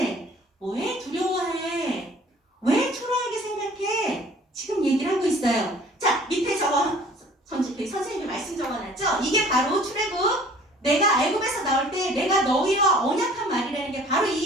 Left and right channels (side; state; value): both; normal; correlation 0.51